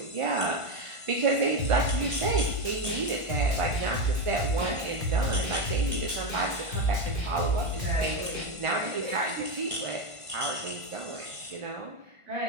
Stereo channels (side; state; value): left; late; 1.5 ms